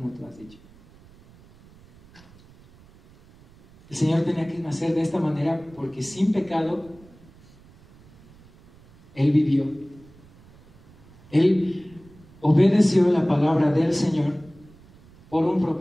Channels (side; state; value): right; noise; rumble, 26 dB below the sound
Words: tú has dicho. El Señor tenía que nacer de esta manera porque sin pecado Él vivió. Él obedeció la palabra del Señor por un